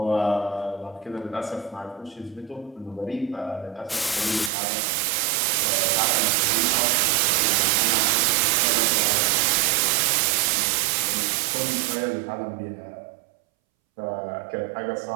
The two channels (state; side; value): drops out; left; at 4.5 s